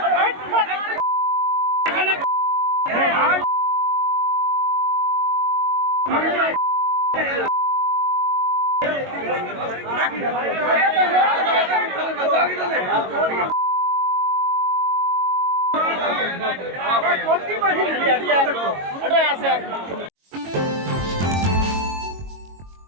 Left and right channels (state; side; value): late; left; 22 ms